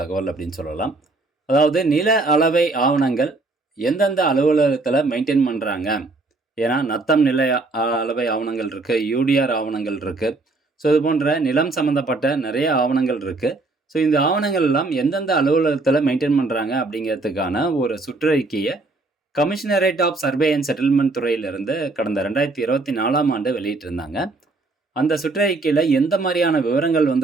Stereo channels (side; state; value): left; quieter; 3.3 dB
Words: அப்படின்னு சொல்லலாம். அதாவது நில அளவை ஆவணங்கள் எந்தெந்த அலுவலகத்தில் மெயின்டைன் பண்ணுறாங்க. ஏன்னா நத்தம் நில அளவை ஆவணங்கள் இருக்குது, யூடிஆர் ஆவணங்கள் இருக்குது. ஸோ இது போன்ற நிலம் சம்மந்தப்பட்ட நிறைய ஆவணங்கள் இருக்குது. ஸோ இந்த ஆவணங்கள் எல்லாம் எந்தெந்த அலுவலகத்தில் மெயின்டைன் பண்ணுறாங்க அப்படிங்கிறதுக்கான ஒரு சுற்றறிக்கையை commissionerate of survey and settlement துறையிலிருந்து கடந்த 2024ஆம் ஆண்டு வெளியிட்டிருந்தாங்க. அந்த சுற்றறிக்கையில் எந்த மாதிரியான விவரங்கள்